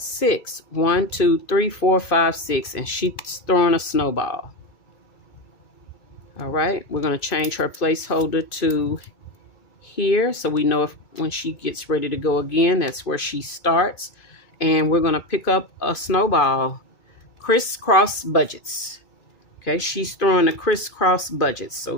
6. 1, 2, 3, 4, 5, 6. And she's throwing a snowball. All right, we're going to change her placeholder to here, so we know if when she gets ready to go again, that's where she starts. And we're going to pick up a Snowball, crisscross budgets. Okay, she's throwing the crisscross budgets. So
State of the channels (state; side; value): late; right; 2.3 ms